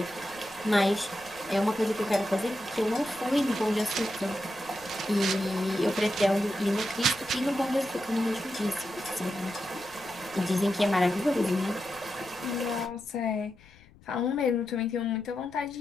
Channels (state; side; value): noise; left; rumble, 25 dB below the sound